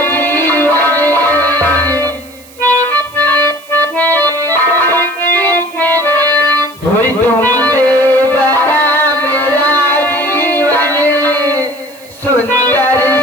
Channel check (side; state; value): right; noise; hiss, 24 dB below the sound